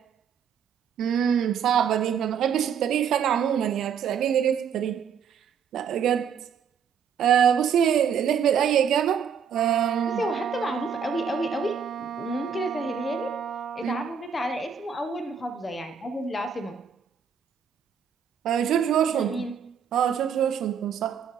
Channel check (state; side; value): quieter; left; 7.3 dB